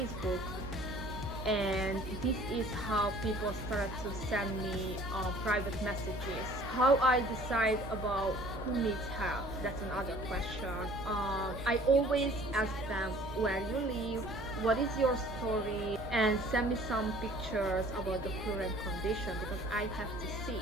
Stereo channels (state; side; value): normal; both; correlation 0.52